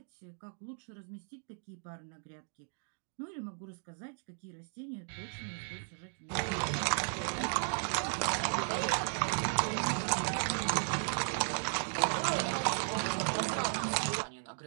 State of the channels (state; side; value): silent; left; 54 dB below the other